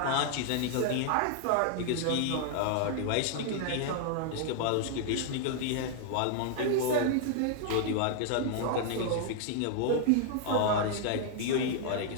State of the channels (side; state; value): both; different; correlation 0.00